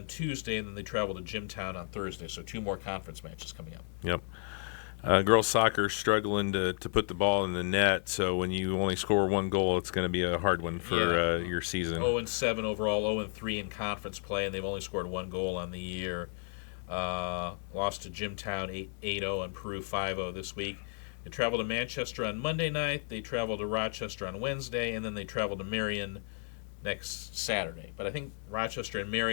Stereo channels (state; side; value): silent; right; 56 dB below the other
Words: Tuesday, and then they travel to Jimtown on Thursday. So 2 more conference matches coming up. Yep. Girls soccer struggling to put the ball in the net, so when you only score 1 goal, it's going to be a hard one for your season. 0-7 overall, 0-3 in conference play, and they've only scored 1 goal on the year. Lost to Jimtown 8-0 and Peru 5-0 this week. They travel to Manchester on Monday night. They travel to Rochester on Wednesday, and then they travel to Marion next Saturday. But I think Rochester and